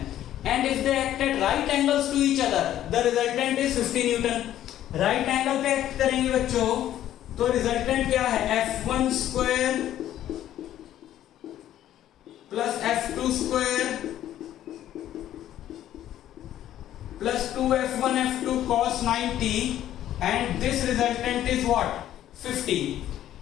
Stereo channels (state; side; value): quieter; right; 12.1 dB